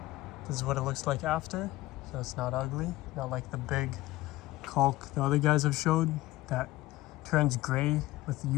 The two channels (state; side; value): quieter; right; 17.5 dB